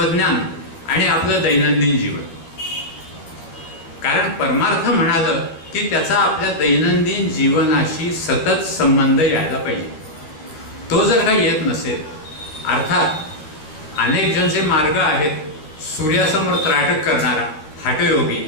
आणि आपलं दैनंदिन जीवन। कारण परमार्थ म्हणालं की त्याचा आपल्या दैनंदिन जीवनाशी सतत संबंध यायला पाहिजे। तो जर का येत नसेल, अर्थात अनेक जण जे मार्ग आहेत, सूर्यासमोर त्राटक करणारा हठयोगी,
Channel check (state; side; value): late; right; 13 ms